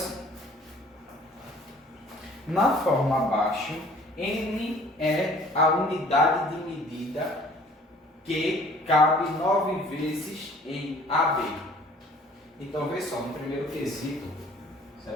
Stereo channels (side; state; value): both; normal; correlation 0.53